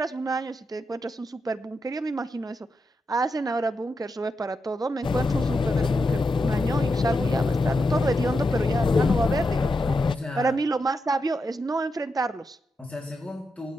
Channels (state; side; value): normal; both; correlation 0.85